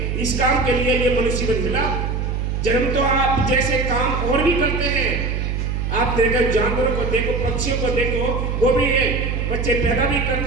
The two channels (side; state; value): right; noise; hum, 1 dB below the sound